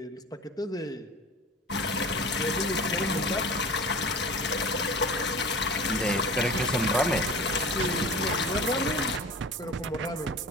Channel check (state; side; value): normal; both; correlation 0.37